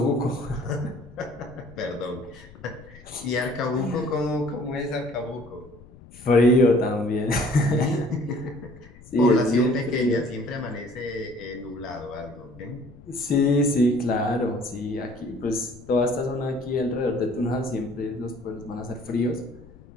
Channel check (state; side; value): noise; left; rumble, 21 dB below the sound